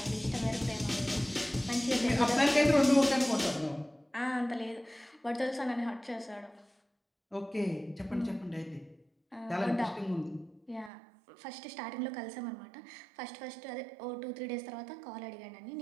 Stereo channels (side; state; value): left; drops out; at 10.9 s